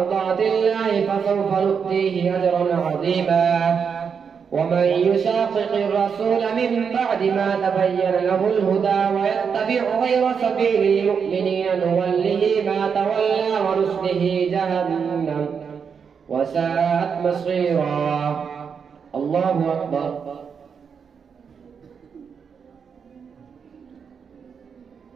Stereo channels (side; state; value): left; quieter; 6.5 dB